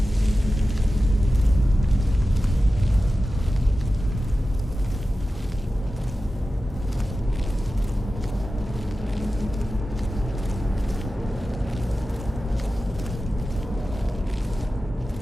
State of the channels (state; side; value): normal; both; correlation 0.94